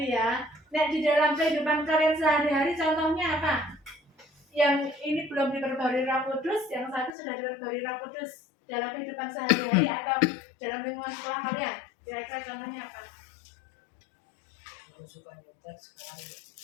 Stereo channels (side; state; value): right; drops out; at 7.1 s